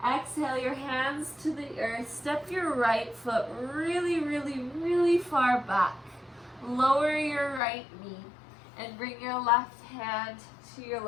Exhale your hands to the earth. Step your right foot really, really, really far back. Lower your right knee and bring your left hand to your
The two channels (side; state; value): right; drops out; at 7.6 s